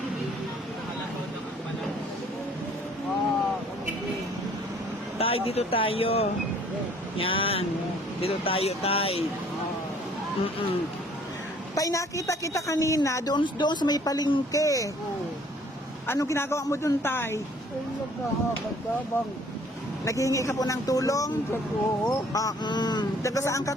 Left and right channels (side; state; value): both; normal; correlation 0.57